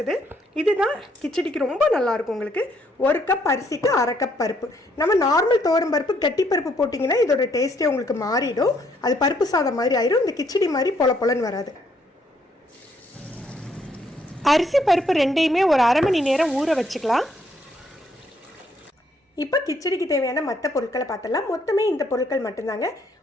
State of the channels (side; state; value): both; normal; correlation 0.70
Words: இதுதான் கிச்சடிக்கு ரொம்ப நல்லாயிருக்கும். உங்களுக்கு ஒரு கப் அரிசிக்கு அரை கப் பருப்பு. நம்ம நார்மல் துவரம்பருப்பு கட்டி பருப்பு போட்டிங்கன்னா இதோட டேஸ்ட்டே உங்களுக்கு மாறிடும். அது பருப்பு சாதம் மாதிரி ஆயிடும். இந்த கிச்சடி மாதிரி பொலன்னு வராது. அரிசி பருப்பு ரெண்டையுமே ஒரு அரை மணி நேரம் ஊற வச்சுக்கலாம். இப்போ கிச்சடிக்கு தேவையான மற்ற பொருட்களை பார்த்தலாம். மொத்தமே இந்த பொருட்கள் மட்டும்தாங்க.